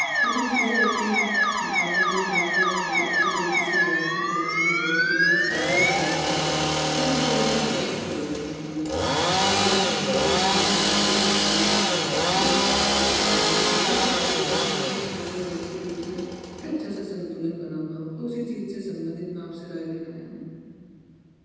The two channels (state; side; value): identical; both; correlation 1.00